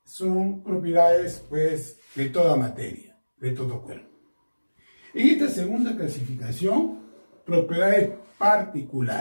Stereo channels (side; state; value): both; inverted; correlation -1.00